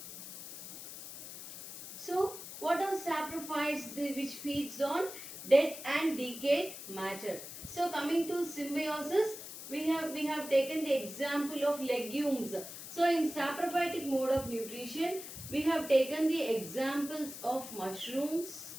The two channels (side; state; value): left; noise; hiss, 11 dB below the sound